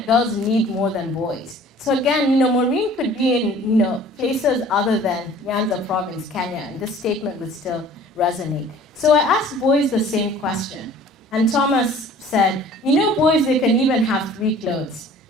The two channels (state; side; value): normal; both; correlation 0.49